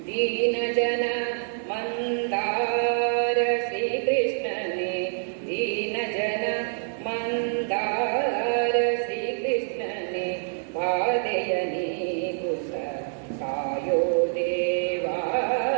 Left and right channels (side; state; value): left; silent; 61 dB below the other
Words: ದೀನ ಜನ ಮಂದಾರ ಶ್ರೀಕೃಷ್ಣನೇ, ದೀನ ಜನ ಮಂದಾರ ಶ್ರೀಕೃಷ್ಣನೇ, ಬಾಧೆಯ ನೀಗುಸ ಕಾಯೋ ದೇವಾ,